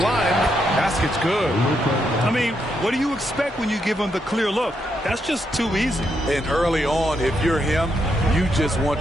Basket's good. I mean, what do you expect when you give him the clear look? That's just too easy. And early on, if you're him, you just want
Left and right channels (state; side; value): normal; both; correlation 0.79